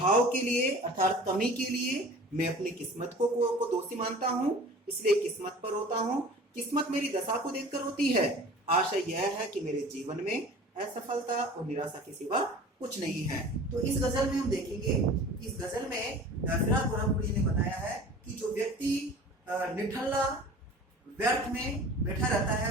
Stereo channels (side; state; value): both; normal; correlation 0.42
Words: के लिए अर्थात कमी के लिए मैं अपनी किस्मत को दोषी मानता हूँ, इसलिए किस्मत पर रोता हूँ। किस्मत मेरी दशा को देखकर रोती है। आशा यह है कि मेरे जीवन में असफलता और निराशा के सिवा कुछ नहीं है। तो इस गजल में हम देखेंगे, इस गजल में फिराक गोरखपुरी ने बताया है कि जो व्यक्ति निठल्ला व्यर्थ में बैठा रहता